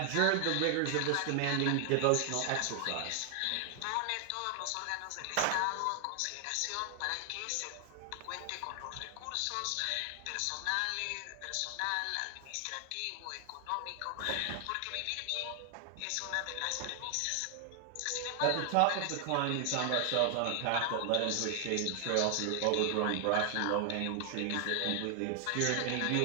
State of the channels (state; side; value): different; both; correlation 0.00